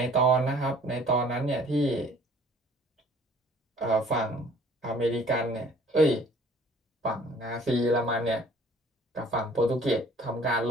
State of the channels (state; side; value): normal; both; correlation 0.54